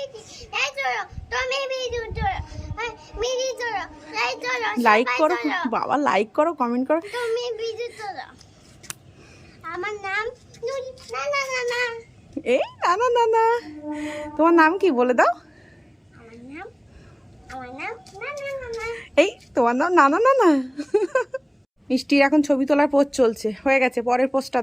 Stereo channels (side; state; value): both; identical; correlation 1.00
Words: এই তো তুমি ভিডিও করো মিনি করো লাইক করো করো বাবা, লাইক করো, কমেন্ট করো। তুমি ভিডিও করো আমার নাম না না না না এই না না না না, তোমার নাম কি বলে দাও? আমার নাম না না না না এই তোমার নাম না না না না। মিষ্টির এখন ছবি তোলার পোজ চলছে, হয়ে গেছে, পরের পোজটা